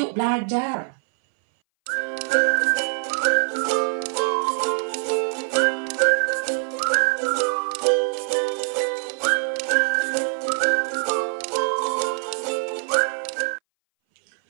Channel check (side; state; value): left; silent; 61 dB below the other